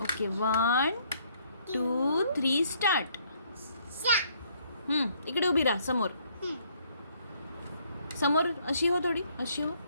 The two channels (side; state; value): both; inverted; correlation -0.66